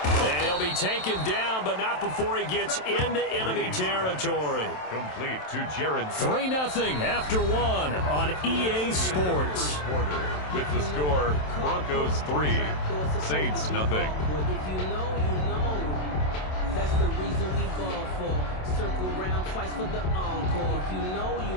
And he'll be taken down, but not before he gets into enemy territory. Complete to Jared. 3-0 after 1 on EA Sports. Quarter with the score, Broncos 3, Saints nothing. That's the reason we ball for. Circle round twice for the encore. If you know, you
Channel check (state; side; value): late; right; 27 ms